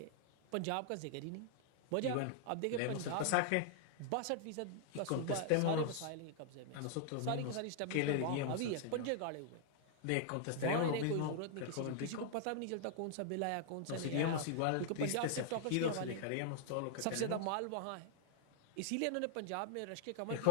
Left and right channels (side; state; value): both; different; correlation 0.00